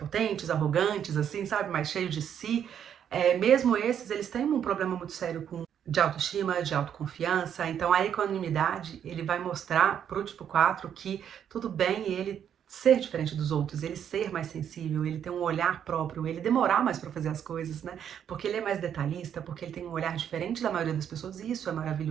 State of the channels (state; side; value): quieter; left; 9.0 dB